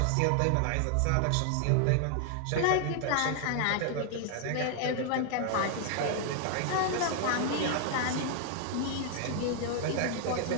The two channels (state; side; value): different; both; correlation 0.00